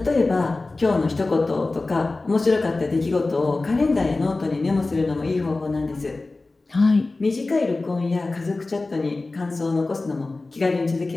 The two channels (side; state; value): right; quieter; 3.3 dB